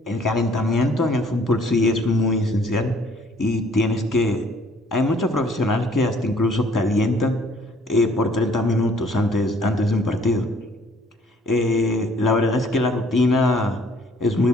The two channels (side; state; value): both; normal; correlation 0.60